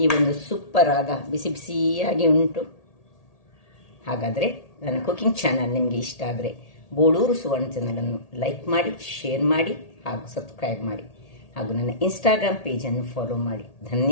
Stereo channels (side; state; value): right; late; 1.8 ms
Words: ಈ ಒಂದು ಸೂಪರ್ ಆದ ಬಿಸಿ ಬಿಸಿಯಾಗಿ ಉಂಟು. ಹಾಗಾದರೆ ನನ್ನ ಕುಕಿಂಗ್ ಚಾನಲ್ ನಿಮಗೆ ಇಷ್ಟ ಆದರೆ ಬೋಳೂರು ಸುವರ್ಣ ಚಾನಲನ್ನು ಲೈಕ್ ಮಾಡಿ, ಶೇರ್ ಮಾಡಿ ಹಾಗೂ ಸಬ್ಸ್ಕ್ರೈಬ್ ಮಾಡಿ ಹಾಗೂ ನನ್ನ ಇನ್ಸ್ಟಾಗ್ರಾಮ್ ಪೇಜನ್ನು ಫಾಲೋ ಮಾಡಿ.